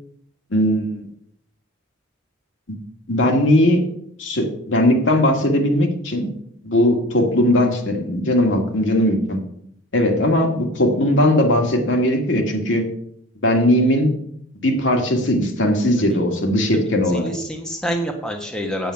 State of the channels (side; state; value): both; normal; correlation 0.40